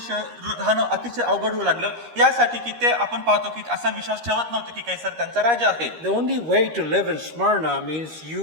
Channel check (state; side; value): late; left; 13 ms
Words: राहणं अतिशय अवघड होऊ लागलं, यासाठी की ते आपण पाहतो की असा विश्वास ठेवत नव्हते की कैसर त्यांचा राजा आहे. The only way to live in Smyrna means